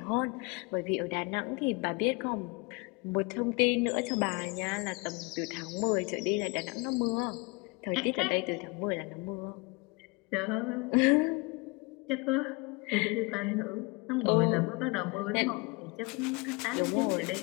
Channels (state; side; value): quieter; right; 27.3 dB